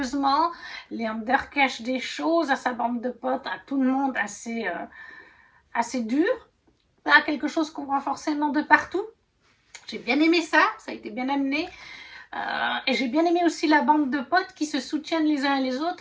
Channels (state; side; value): identical; both; correlation 1.00